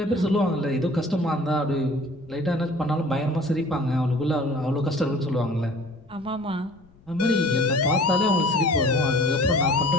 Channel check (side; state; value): left; noise; rumble, 28 dB below the sound